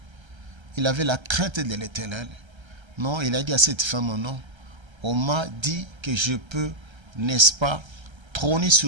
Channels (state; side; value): late; left; 1.3 ms